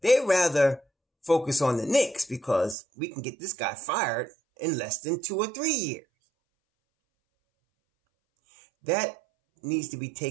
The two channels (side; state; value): left; drops out; at 2.8 s